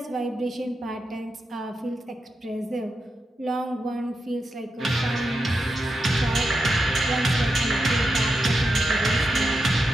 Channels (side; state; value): both; normal; correlation 0.87